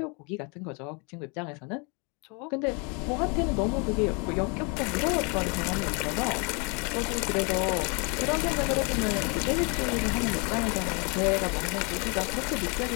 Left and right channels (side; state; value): right; quieter; 32.8 dB